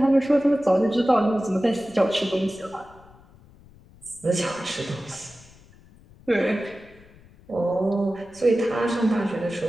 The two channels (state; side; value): noise; left; rumble, 25 dB below the sound